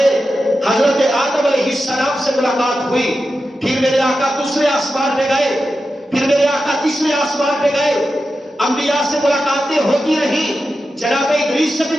حضرت آدم علیہ السلام سے ملاقات ہوئی، پھر میرے آقا دوسرے آسمان پہ گئے، پھر میرے آقا تیسرے آسمان پہ گئے، انبیاء سے ملاقاتیں ہوتی رہی، جناب ادریس سے بھی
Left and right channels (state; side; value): normal; both; correlation 0.91